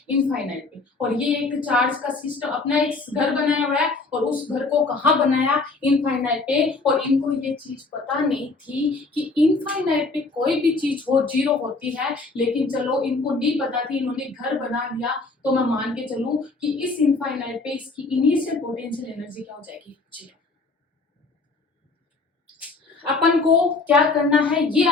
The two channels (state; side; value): quieter; right; 3.7 dB